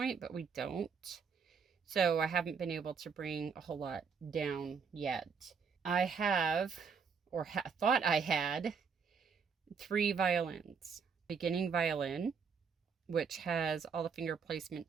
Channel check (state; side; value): quieter; left; 6.0 dB